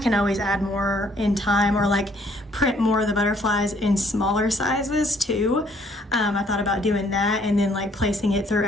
can always add more in time, or like print more of the butterflies in smaller sizes too. I thought about doing that and then like placing it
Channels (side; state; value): both; normal; correlation 0.64